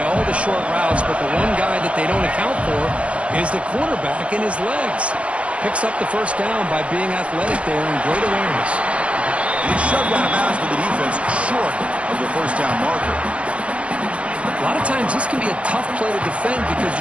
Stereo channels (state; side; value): late; left; 0.061 ms